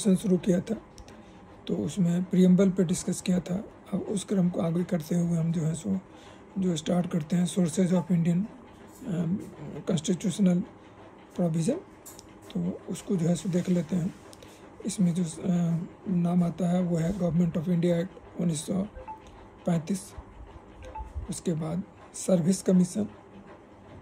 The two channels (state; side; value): identical; both; correlation 1.00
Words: शुरू किया था, तो उसमें प्रीएम्बल पे डिस्कस किया था। अब उस क्रम को आगे करते हुए हम जो स्टार्ट करते हैं sources of Indian constitutional provision, तो उसको देख लेते हैं। इसमें जो नाम आता है वो है गवर्नमेंट ऑफ इंडिया एक्ट 1935। उसके बाद service commission.